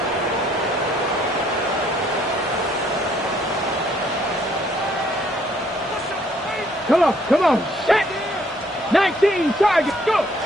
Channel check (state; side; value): normal; both; correlation 0.65